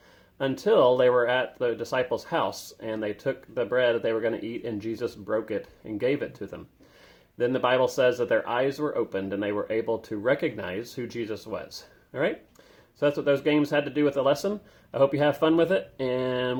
Until they were at the disciples' house and they took the bread that they were going to eat and Jesus broke it and gave it to them. Then the Bible says that their eyes were opened and they were able to recognize who Jesus was. All right? So that's what those games had to do with the lesson. I hope you have fun with it, and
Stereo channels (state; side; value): identical; both; correlation 1.00